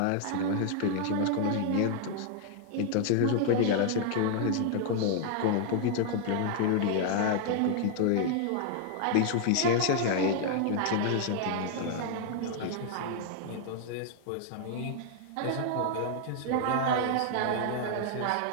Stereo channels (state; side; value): different; both; correlation 0.00